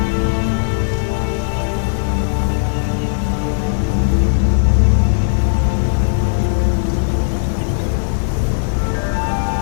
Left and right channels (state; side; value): silent; right; digital silence